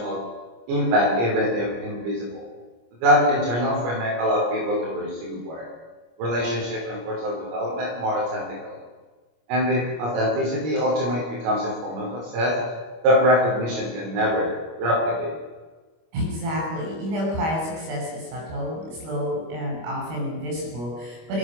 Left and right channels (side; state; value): left; late; 25 ms